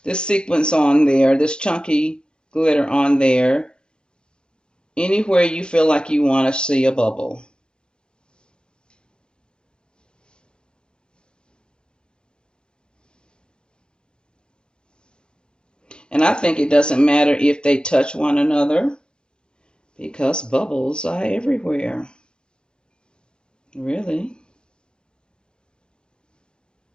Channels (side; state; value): right; late; 0.048 ms